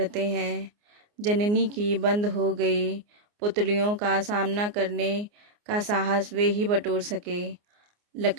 हैं। जननी की बंद हो गई पुतलियों का सामना करने का साहस वे ही बटोर सके।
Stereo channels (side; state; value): left; late; 29 ms